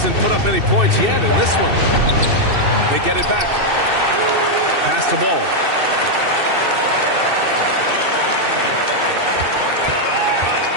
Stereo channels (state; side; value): late; left; 2.7 ms